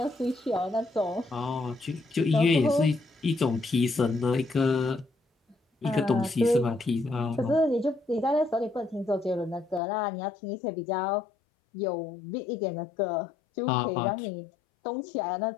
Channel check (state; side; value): drops out; right; at 9.8 s